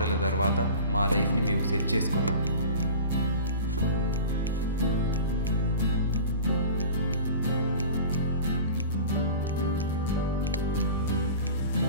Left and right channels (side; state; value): both; inverted; correlation -0.37